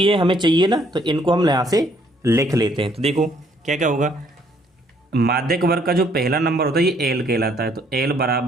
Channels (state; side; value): normal; both; correlation 0.65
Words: हमें चाहिए ना, तो इनको हम यहाँ से लिख लेते हैं। तो देखो क्या क्या होगा, माध्यक वर्ग का जो पहला नंबर होता है ये L कहलाता है, तो L =